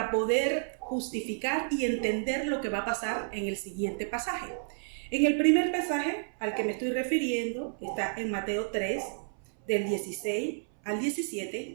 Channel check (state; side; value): silent; left; 57 dB below the other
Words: poder justificar y entender lo que va a pasar en el siguiente pasaje. En el primer pasaje al que me estoy refiriendo está en Mateo 3, del 16 al